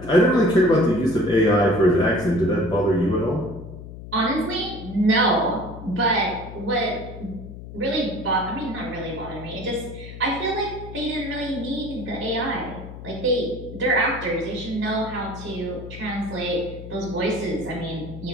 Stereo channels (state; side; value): noise; left; hum, 13 dB below the sound